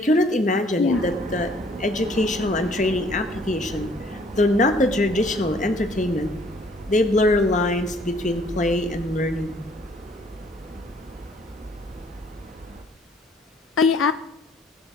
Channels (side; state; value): both; normal; correlation 0.60